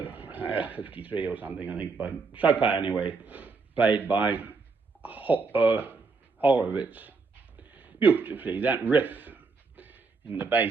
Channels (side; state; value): left; quieter; 4.5 dB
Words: 53 or something, I think, by Chopin anyway, played by Horowitz. Beautifully, that riff in the